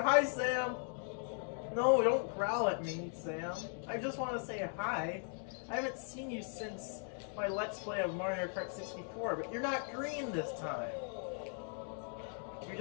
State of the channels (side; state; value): right; silent; 52 dB below the other